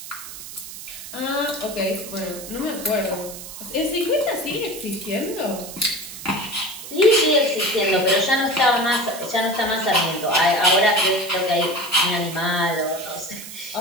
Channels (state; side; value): noise; right; hiss, 12 dB below the sound